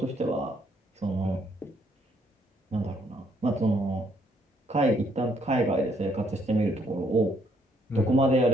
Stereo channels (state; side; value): normal; both; correlation 0.70